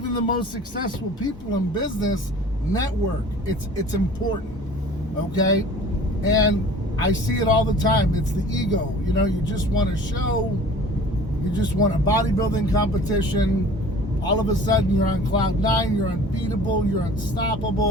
the most successful people in business network. It's important, okay? And I see it all the time. It's the ego. You just want to show. You just want a bodybuilding competition. All of a sudden, you're on cloud 9. You're unbeatable. You're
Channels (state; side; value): normal; both; correlation 0.46